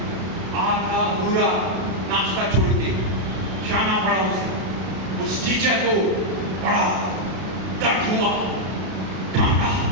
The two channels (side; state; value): left; late; 32 ms